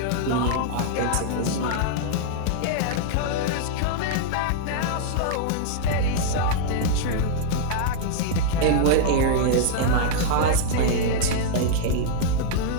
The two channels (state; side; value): different; both; correlation -0.01